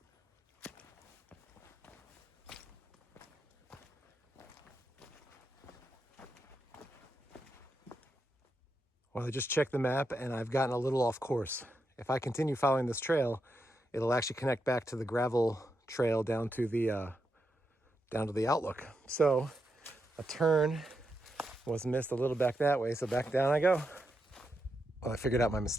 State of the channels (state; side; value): normal; both; correlation 0.84